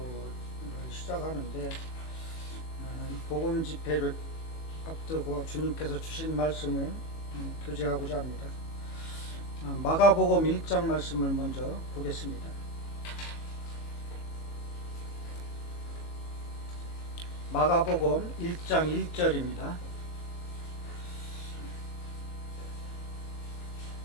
시작하는데, 복음 집회를 앞두고 주님께서 주신 말씀을 교제하고자 합니다. 마가복음 1장 말씀을 먼저 보겠습니다. 마가복음 1장 1절입니다.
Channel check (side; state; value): right; late; 18 ms